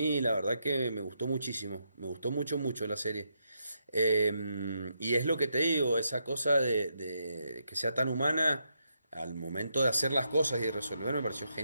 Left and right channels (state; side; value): inverted; both; correlation -0.80